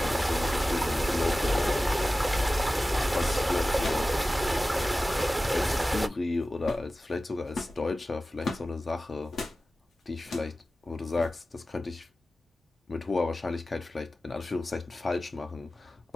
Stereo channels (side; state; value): both; normal; correlation 0.95